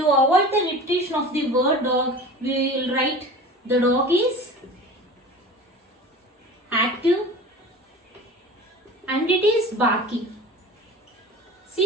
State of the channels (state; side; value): normal; both; correlation 0.37